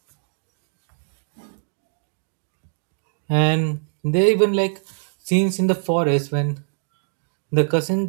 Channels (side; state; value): left; silent; digital silence